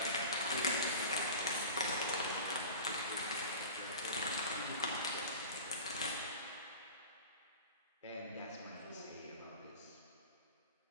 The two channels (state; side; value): inverted; both; correlation -0.37